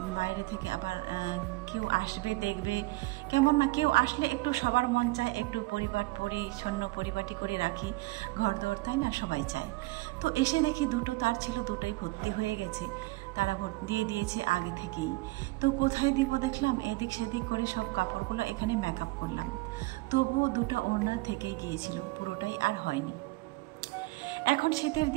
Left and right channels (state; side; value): quieter; left; 22.2 dB